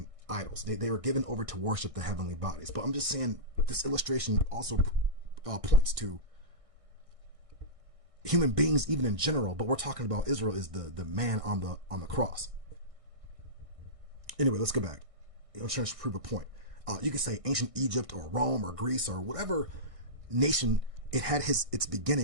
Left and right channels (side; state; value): left; late; 1.6 ms